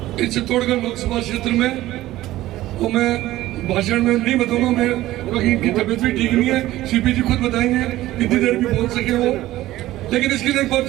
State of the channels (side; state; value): left; quieter; 15.8 dB